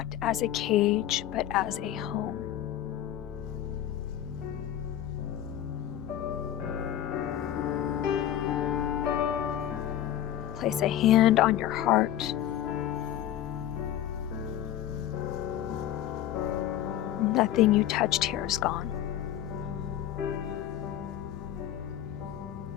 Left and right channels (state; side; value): quieter; right; 11.7 dB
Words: as a cage, but as a home. Place a hand on your heart. Nothing you touched here is gone.